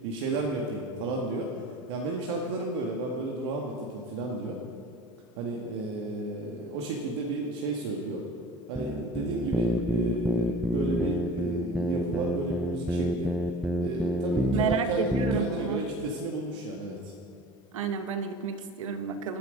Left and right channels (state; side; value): normal; both; correlation 0.40